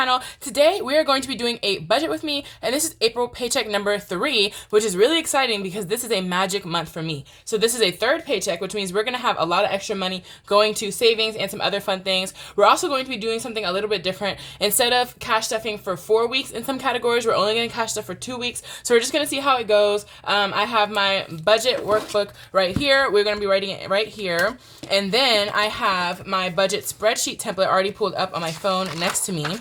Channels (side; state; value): both; identical; correlation 1.00